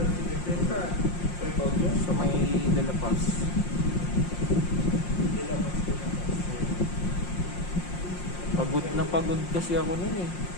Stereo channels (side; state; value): right; late; 5.6 ms